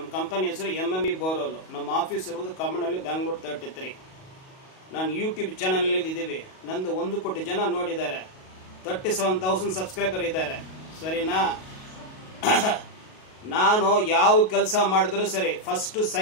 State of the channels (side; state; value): right; late; 38 ms